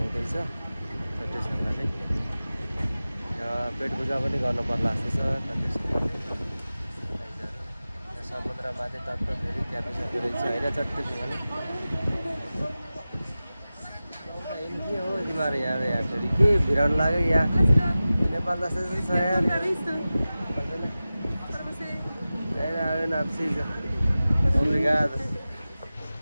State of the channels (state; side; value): inverted; both; correlation -0.96